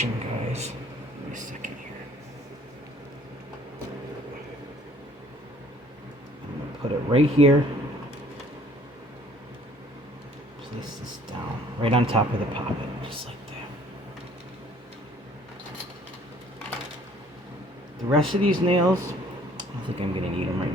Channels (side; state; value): both; normal; correlation 0.57